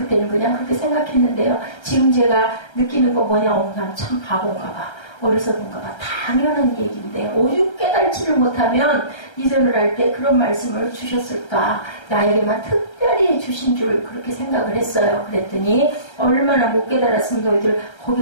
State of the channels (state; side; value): late; right; 1.3 ms